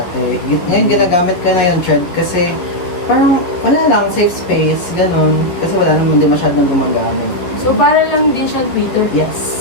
Ngayon, ginagamit ko na yung thread kasi parang wala lang, safe space, ganun. Kasi wala naman din masyadong gumagamit. So para lang din siya Twitter.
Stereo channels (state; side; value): late; right; 11 ms